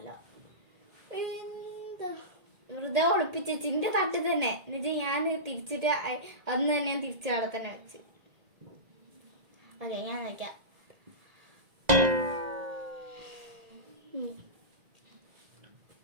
വെറുതെ ഒളിപ്പിച്ച് എന്റെ തട്ടിൽ തന്നെ. എന്നുവെച്ചാൽ ഞാൻ തിരിച്ചിട്ട് അന്ന് തന്നെ ഞാൻ തിരിച്ച് അവിടെ തന്നെ വെച്ച്. ഓക്കെ, ഞാൻ നോക്കാം.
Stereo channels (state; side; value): late; left; 1.9 ms